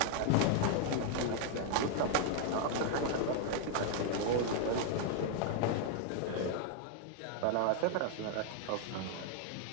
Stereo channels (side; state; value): both; different; correlation 0.00